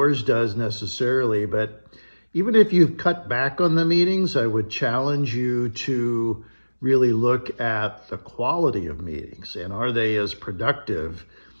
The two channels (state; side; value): inverted; both; correlation -1.00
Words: does necessarily. But even if you've cut back on the meetings, I would challenge you to really look at the quality of meetings and are they as productive